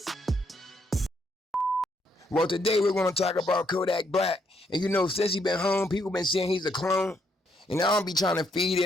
Well, today we're going to talk about Kodak Black. And you know, since he's been home, people been saying he's a clone. And I don't be trying to feed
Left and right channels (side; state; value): both; normal; correlation 0.74